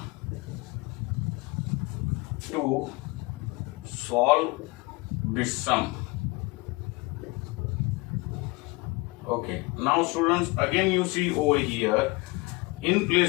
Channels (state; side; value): quieter; right; 24.9 dB